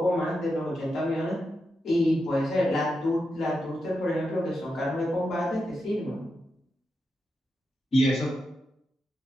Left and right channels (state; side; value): normal; both; correlation 0.87